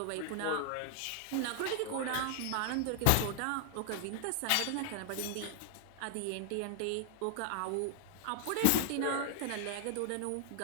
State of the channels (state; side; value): different; both; correlation 0.00